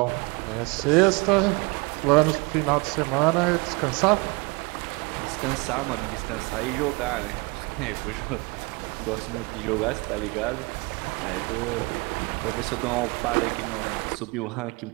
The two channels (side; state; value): left; quieter; 27.6 dB